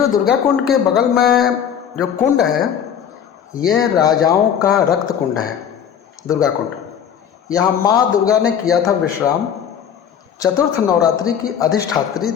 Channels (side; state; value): right; quieter; 8.4 dB